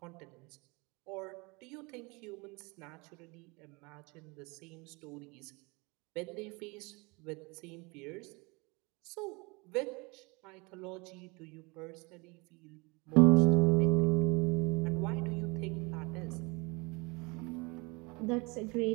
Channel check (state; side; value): quieter; left; 27.3 dB